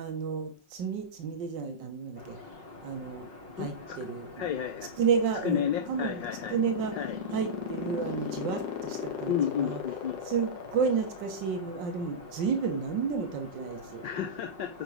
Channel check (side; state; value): left; late; 5.5 ms